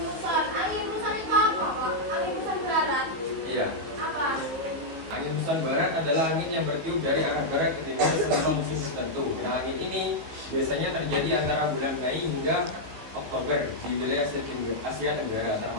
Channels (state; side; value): late; left; 18 ms